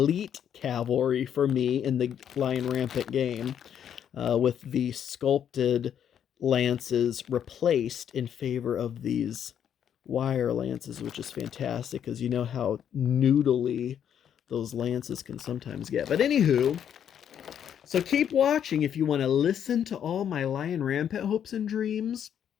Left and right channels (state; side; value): quieter; right; 9.1 dB